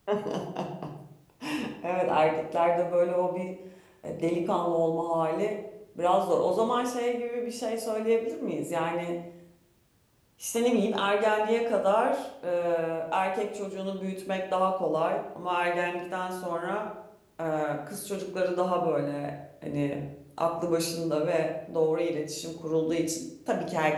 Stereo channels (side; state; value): both; identical; correlation 1.00